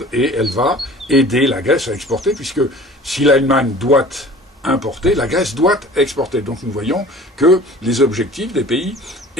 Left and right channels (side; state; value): both; normal; correlation 0.45